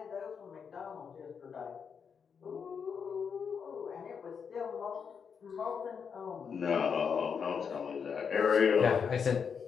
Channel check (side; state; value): right; quieter; 6.5 dB